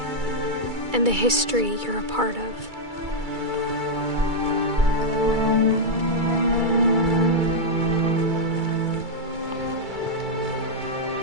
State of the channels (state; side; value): late; left; 2.3 ms